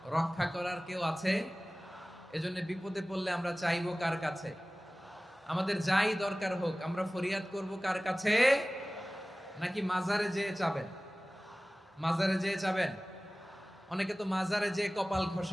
রক্ষা করার কেউ আছে? এজন্য বিপদে পড়লে আমরা চাইবো কার কাছে? আমাদের যাই দরকার হোক আমরা ফরিয়াদ করব কার কাছে? নাকি মাজারে যেয়ে চাবেন? মাজারে যেয়ে চাবেন? অনেকে তো মাজারে যেয়ে কপাল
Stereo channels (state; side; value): normal; both; correlation 0.98